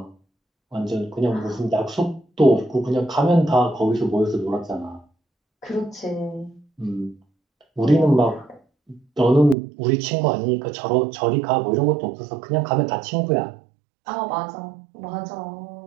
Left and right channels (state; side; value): drops out; left; at 9.6 s